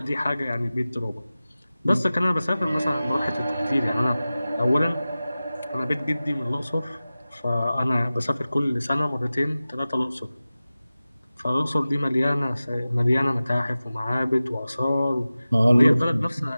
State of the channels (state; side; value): inverted; both; correlation -0.96